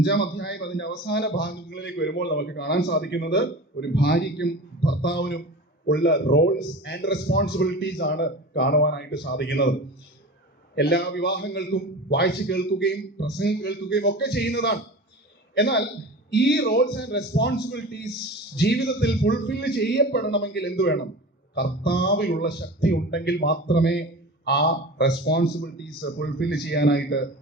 അധ്യായം അതിന്റെ അവസാന ഭാഗങ്ങളിലേക്ക് വരുമ്പോൾ നമുക്ക് കാണാൻ സാധിക്കുന്നത് ഒരു ഭാര്യയ്ക്കും ഭർത്താവിനും ഉള്ള റോൾസ് ആൻഡ് റെസ്പോൺസിബിലിറ്റീസ് ആണ് കാണുവാനായിട്ട് സാധിക്കുന്നത്. എല്ലാ വിവാഹങ്ങൾക്കും വായിച്ചു കേൾക്കുകയും പ്രസംഗം കേൾക്കുകയും ഒക്കെ ചെയ്യുന്നതാണ്. എന്നാൽ ഈ റോൾസ് ആൻഡ് റെസ്പോൺസിബിലിറ്റീസ് ജീവിതത്തിൽ ഫുൾഫിൽ ചെയ്യപ്പെടണമെങ്കിൽ എന്ത് വേണം? കർത്താവിലുള്ള ശക്തി ഉണ്ടെങ്കിൽ മാത്രമേ ആ റെസ്പോൺസിബിലിറ്റീസ് ഫുൾഫിൽ ചെയ്യാനായിട്ട്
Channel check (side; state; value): both; normal; correlation 0.33